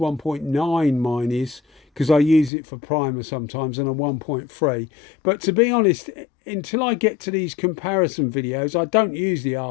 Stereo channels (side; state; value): right; drops out; at 2.5 s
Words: mine is, because I use it for primer sometimes, and a 1.3. But to be honest, until I get to these comparison videos, I don't use the